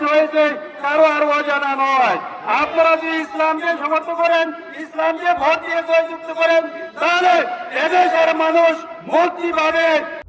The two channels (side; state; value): both; identical; correlation 1.00